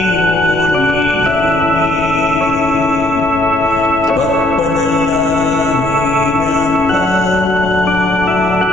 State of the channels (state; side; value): noise; left; rumble, 12 dB below the sound